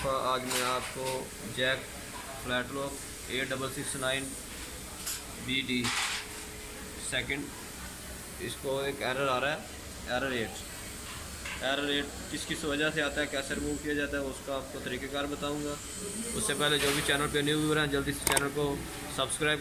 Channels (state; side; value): identical; both; correlation 1.00